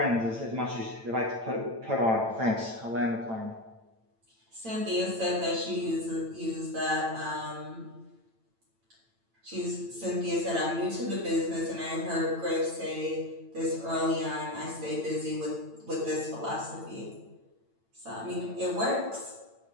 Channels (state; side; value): late; left; 8.9 ms